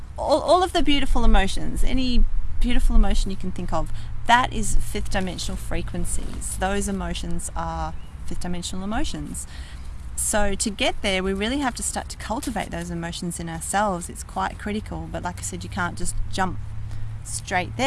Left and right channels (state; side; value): identical; both; correlation 1.00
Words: all of the beautiful emotions. Any beautiful emotion you can think of, that is fifth dimensional frequencies. Those emotions are fifth dimensional emotions. So to get there, we really have to start to cultivate those emotions in ourselves. It's quite critical, but like I said, you can't just jump straight